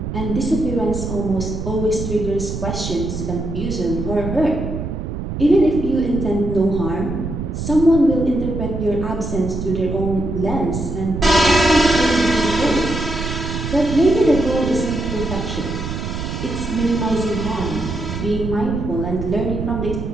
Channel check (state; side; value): noise; right; rumble, 5 dB below the sound